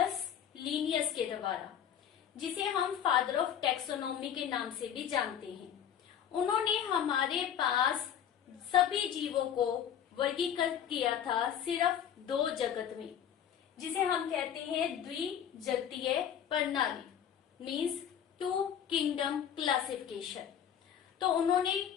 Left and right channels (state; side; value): quieter; right; 9.2 dB